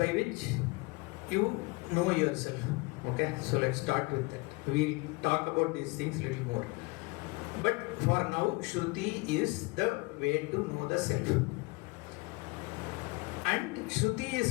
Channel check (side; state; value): right; quieter; 25.9 dB